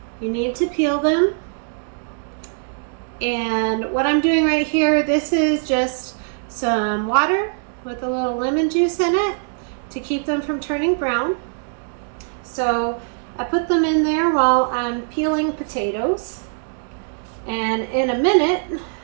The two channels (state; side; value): silent; left; 65 dB below the other